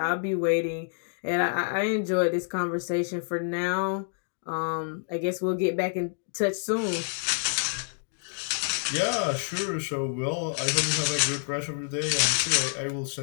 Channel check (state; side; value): silent; right; digital silence